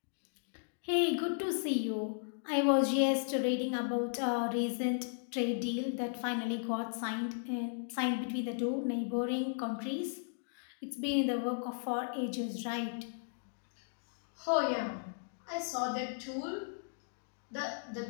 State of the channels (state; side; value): silent; right; digital silence